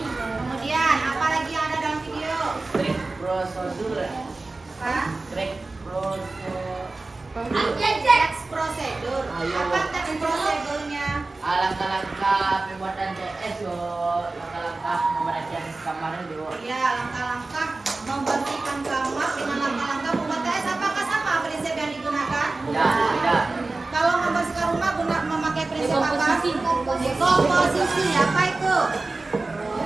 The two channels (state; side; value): quieter; left; 3.4 dB